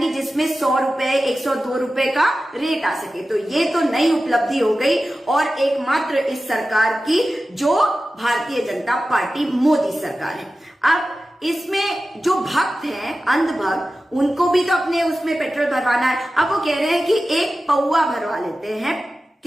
जिसमें 100 रुपए 102 रुपए का रेट आ सके। तो ये तो नई उपलब्धि हो गई और एकमात्र इस सरकार की, जो भारतीय जनता पार्टी मोदी सरकार है। अब इसमें जो भक्त हैं, अंधभक्त, उनको भी तो अपने उसमें पेट्रोल भरवाना है। अब वो कह रहे हैं कि एक पौवा भरवा लेते हैं।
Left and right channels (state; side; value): normal; both; correlation 0.94